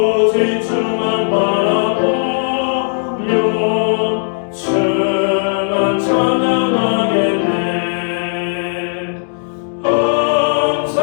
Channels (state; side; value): silent; right; digital silence